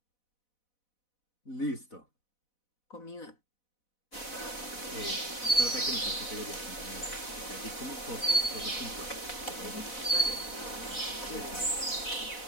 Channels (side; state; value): right; late; 4.0 ms